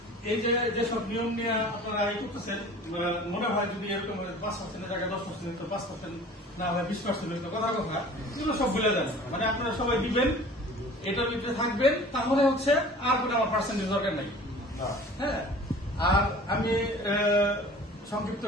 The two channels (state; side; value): normal; both; correlation 0.45